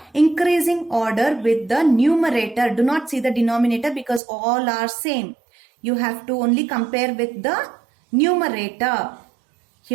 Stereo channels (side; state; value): left; drops out; at 4.2 s